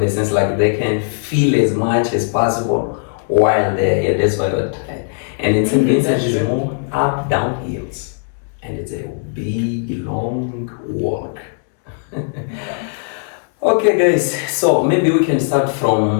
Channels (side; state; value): right; silent; 67 dB below the other